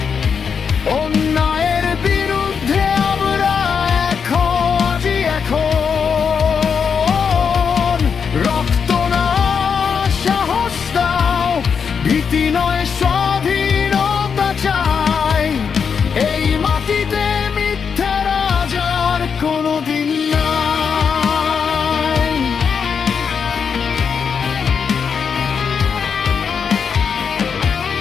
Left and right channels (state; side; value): quieter; right; 6.4 dB